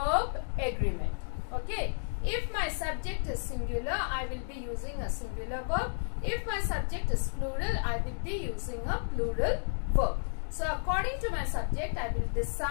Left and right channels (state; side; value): silent; right; digital silence